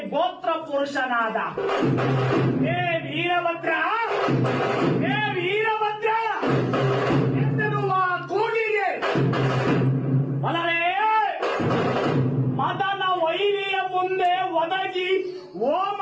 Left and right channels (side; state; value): both; identical; correlation 1.00